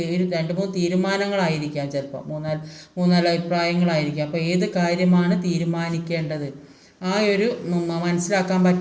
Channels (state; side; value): identical; both; correlation 1.00